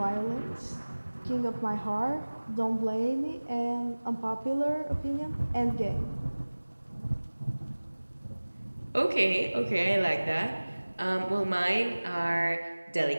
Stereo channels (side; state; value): both; inverted; correlation -1.00